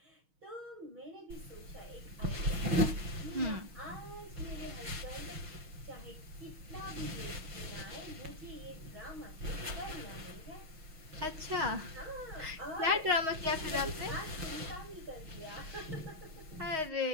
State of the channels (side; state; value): left; late; 6.3 ms